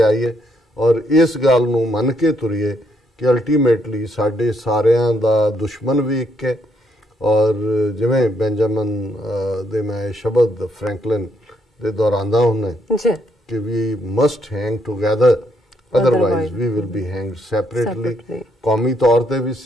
ਔਰ ਇਸ ਗੱਲ ਨੂੰ ਮੰਨ ਕੇ ਤੁਰੀਏ ਕਿ ਅਲਟੀਮੇਟਲੀ ਸਾਡੇ ਸਾਰਿਆਂ ਦਾ ਦੁਸ਼ਮਣ ਵੀ ਇੱਕ ਹੈ। ਔਰ ਜਿਵੇਂ ਬੈਂਜਾਮਨ ਦੇ ਮੈਂ ਸ਼ਬਦ ਫਰੈਂਕਲਿਨ ਦੇ ਦੁਹਰਾਉਂਦਾ ਹੁੰਦਾ ਕਿ we must hang together, otherwise we will be hanged separately. ਕੌਮੀ ਤੌਰ ਤੇ ਵੀ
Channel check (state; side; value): normal; both; correlation 0.74